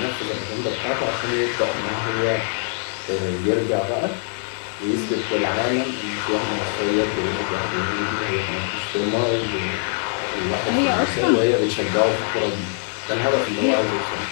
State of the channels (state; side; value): silent; right; 57 dB below the other